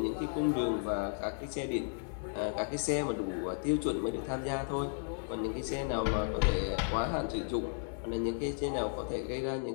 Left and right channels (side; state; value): right; silent; digital silence